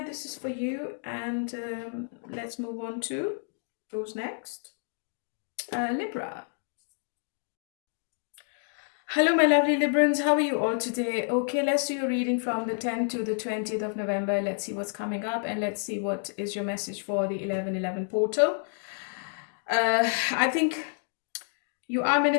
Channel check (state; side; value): silent; right; 58 dB below the other